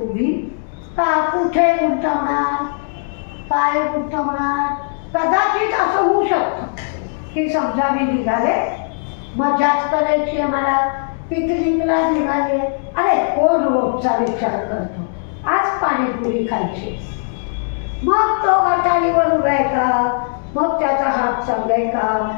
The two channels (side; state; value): right; silent; digital silence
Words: कुठे गुंतवणार, काय गुंतवणार? कदाचित असं होऊ शकतं की समजा मी निघाले, मजाच करायची आहे मला, पिकनिकला निघाले. अरे कोण रोजचा विचार करतो, आज पाणीपुरी खायची. मग तो गटारीवर उभा आहे का, मग त्याचा हात चांगलाय का,